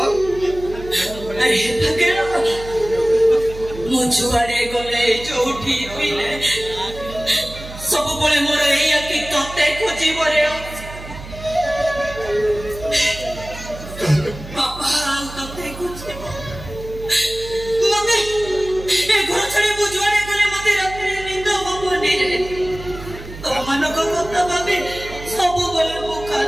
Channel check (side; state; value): right; noise; hum, 13 dB below the sound